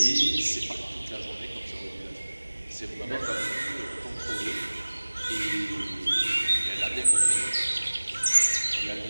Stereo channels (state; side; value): inverted; both; correlation -1.00